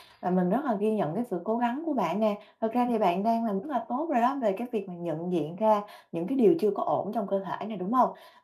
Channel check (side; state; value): both; identical; correlation 1.00